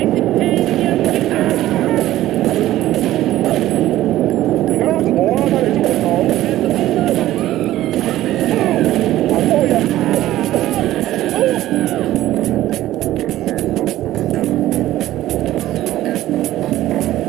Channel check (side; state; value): left; quieter; 14.6 dB